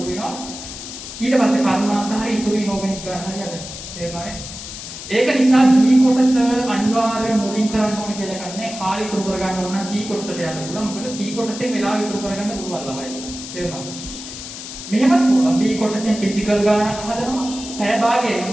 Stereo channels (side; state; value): left; noise; hiss, 11 dB below the sound